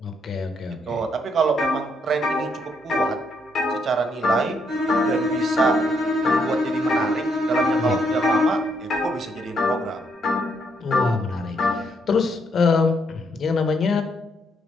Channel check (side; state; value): both; normal; correlation 0.74